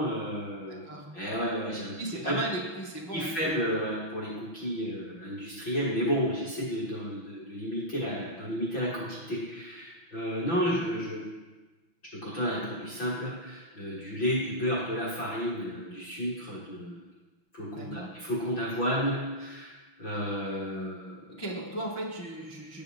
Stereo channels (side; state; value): right; late; 6.0 ms